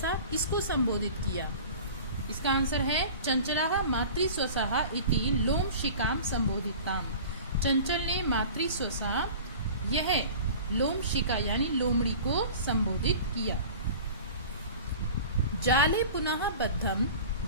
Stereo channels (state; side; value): inverted; both; correlation -0.39